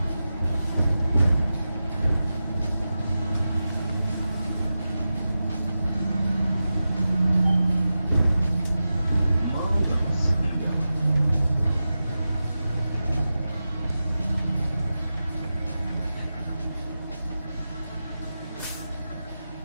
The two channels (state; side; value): inverted; both; correlation -0.92